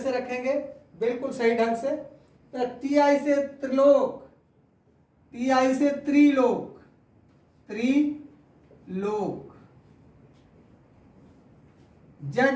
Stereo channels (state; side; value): identical; both; correlation 1.00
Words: रखेंगे बिल्कुल सही ढंग से। तो टी आई से त्रिलोक, टी आई से त्रिलोक, त्रिलोक।